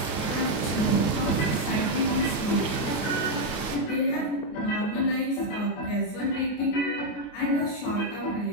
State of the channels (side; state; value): right; late; 28 ms